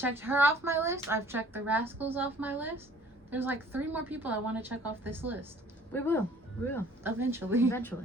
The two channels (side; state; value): both; normal; correlation 0.54